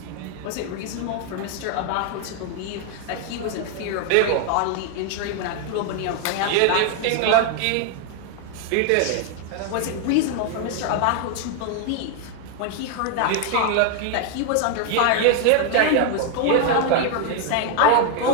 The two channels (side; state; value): both; different; correlation 0.00